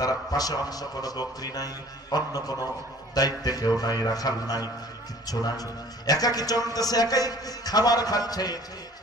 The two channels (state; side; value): normal; both; correlation 0.51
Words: পাশে অন্য কোনো বকরি নাই, অন্য কোনো দায়িত্বে কেউ নাই, রাখাল নাই, কিচ্ছু নাই, একাকি চলতেছে, একাই খাবার খাচ্ছে।